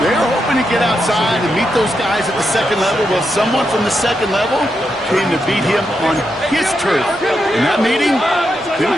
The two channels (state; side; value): normal; both; correlation 0.84